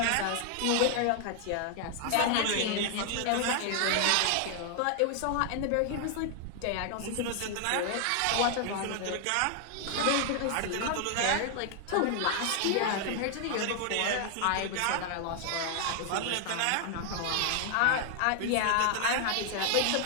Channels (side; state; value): both; different; correlation 0.00